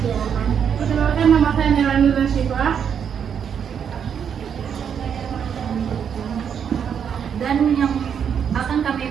Perkenalkan, nama saya Nelani Rasifah. Dan yang akan kami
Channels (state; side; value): quieter; left; 7.8 dB